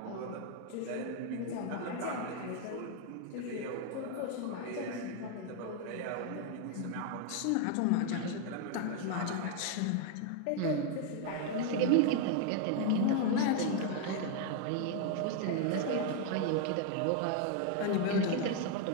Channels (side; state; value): both; different; correlation 0.01